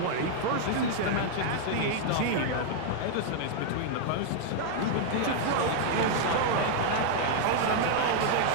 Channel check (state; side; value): different; both; correlation -0.01